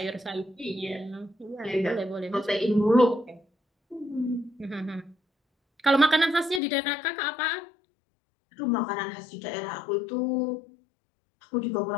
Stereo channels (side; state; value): right; drops out; at 6.6 s